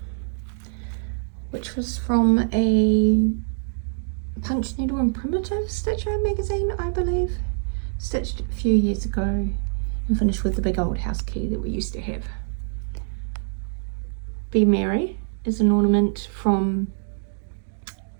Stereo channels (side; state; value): left; silent; digital silence